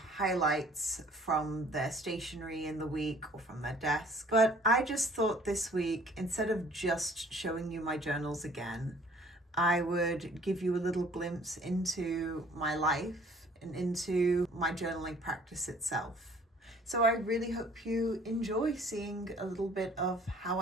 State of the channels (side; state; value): both; normal; correlation 0.54